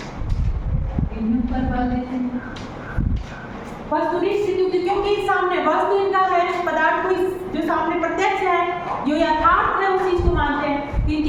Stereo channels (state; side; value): identical; both; correlation 1.00